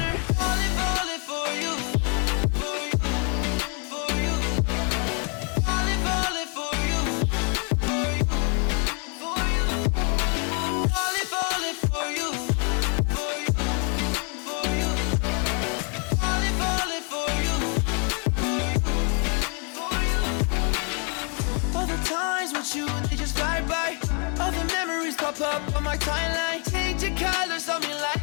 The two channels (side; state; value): right; quieter; 37.8 dB